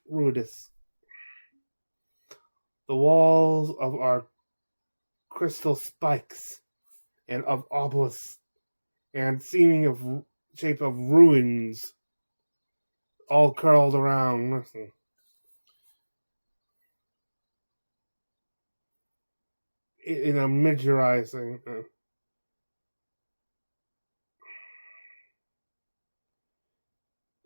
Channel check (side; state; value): both; inverted; correlation -1.00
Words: The walls of our crystal spikes and of obelisks and seeming of shape of ruins all curled around. In a miniaturizing.